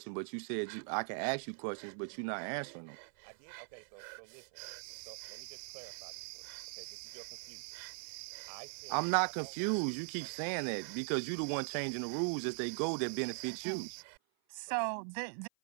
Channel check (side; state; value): left; silent; 51 dB below the other